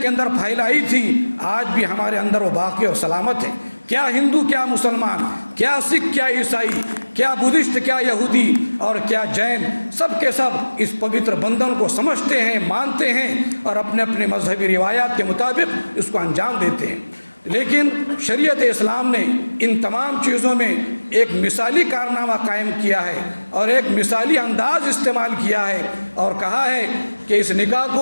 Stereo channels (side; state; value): both; inverted; correlation -1.00